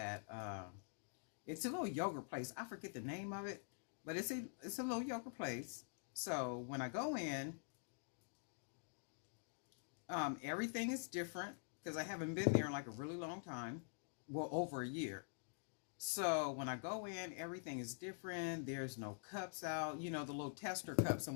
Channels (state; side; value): silent; right; digital silence